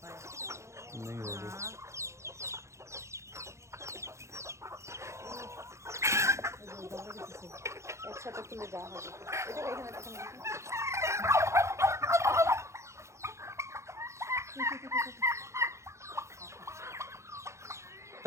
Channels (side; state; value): left; late; 0.14 ms